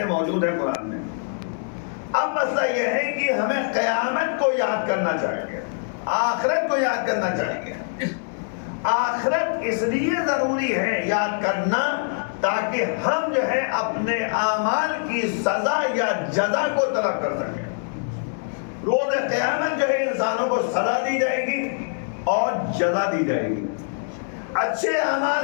موجود ہیں قرآن میں. اب مسئلہ یہ ہے کہ ہمیں قیامت کو یاد کرنا چاہیے، آخرت کو یاد کرنا چاہیے. آخرت اس لیے ضروری ہے یاد کرنا تاکہ ہم جو ہے اپنے اعمال کی سزا یا جزا کو طلب کر سکیں. روز قیامت جو ہے انسانوں کو سزا دی جائے گی اور جزا دی جائے گی. اچھے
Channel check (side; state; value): right; silent; digital silence